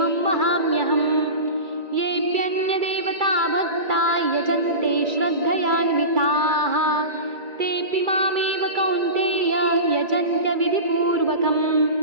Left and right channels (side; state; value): left; late; 2.3 ms